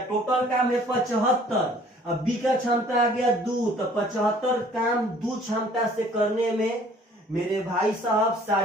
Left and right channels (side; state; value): both; normal; correlation 0.55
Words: टोटल काम है 75, अब बी का क्षमता आ गया 2, तो 75 काम 2 क्षमता से करने में मेरे भाई साहब